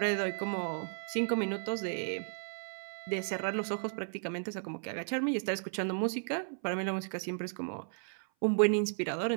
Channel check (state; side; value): silent; left; 55 dB below the other